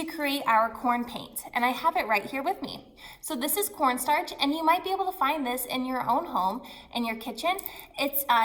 create our corn paint, and I have it right here with me. So this is cornstarch, and you might be able to find this in your own home, in your kitchen. It's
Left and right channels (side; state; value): both; identical; correlation 1.00